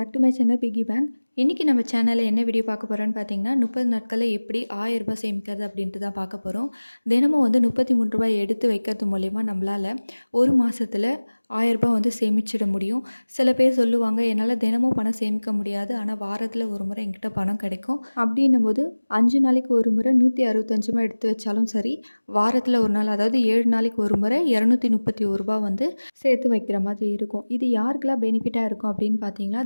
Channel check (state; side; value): inverted; both; correlation -1.00